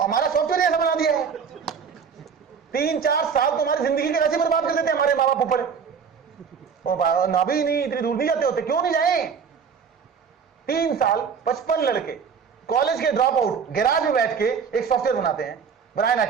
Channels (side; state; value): left; quieter; 6.4 dB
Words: सॉफ्टवेयर ऐसा बना दिया है। 3-4 साल तो हमारी जिंदगी के वैसे बर्बाद कर देते हैं हमारे माँ बाप ऊपर। ना भी नहीं, इतनी दूर नहीं जाते होते। क्यों नहीं जाए? 3 साल 55 लड़के कॉलेज के ड्रॉप आउट गैराज में बैठ के एक सॉफ्टवेयर बनाते हैं। ब्रायन